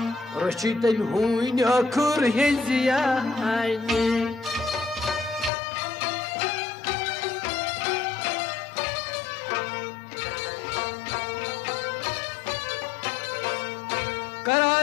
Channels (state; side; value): drops out; right; at 5.5 s